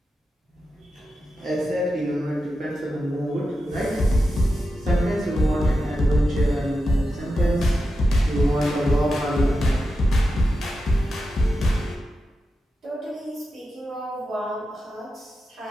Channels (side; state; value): both; normal; correlation 0.89